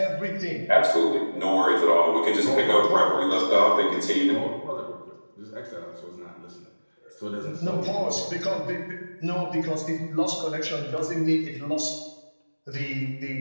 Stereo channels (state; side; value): inverted; both; correlation -1.00